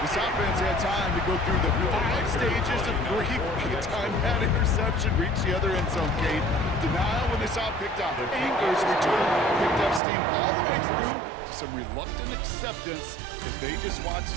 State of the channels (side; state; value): left; drops out; at 10.0 s